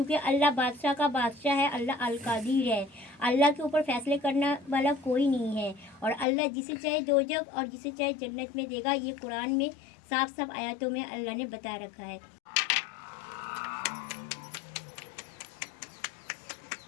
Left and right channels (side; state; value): right; drops out; at 6.2 s